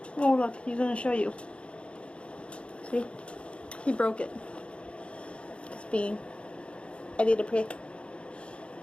Oh look, he's gonna show you. See? He broke it. It's being a little prick.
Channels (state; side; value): late; right; 0.059 ms